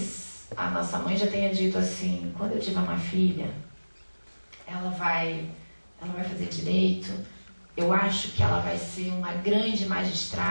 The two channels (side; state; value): both; inverted; correlation -1.00